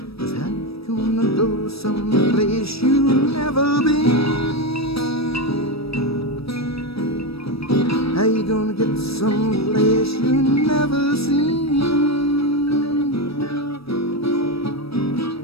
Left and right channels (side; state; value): right; late; 0.77 ms